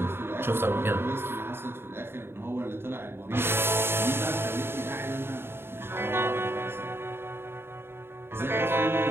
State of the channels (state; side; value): late; left; 0.11 ms